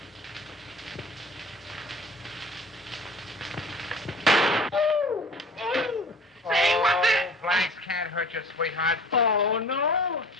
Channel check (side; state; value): both; normal; correlation 0.44